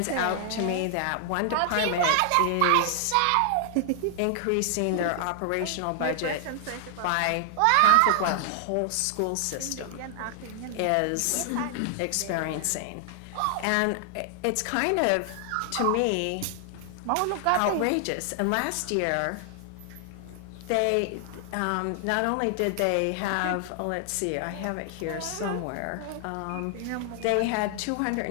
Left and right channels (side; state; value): both; different; correlation 0.00